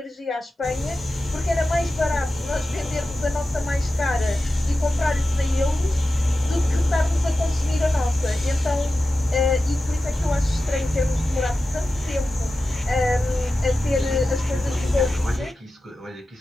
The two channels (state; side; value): normal; both; correlation 0.93